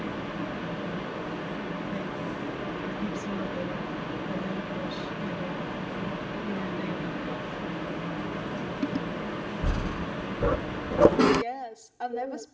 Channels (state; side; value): identical; both; correlation 1.00